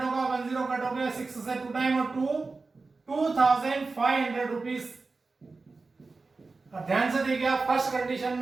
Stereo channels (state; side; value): quieter; left; 3.9 dB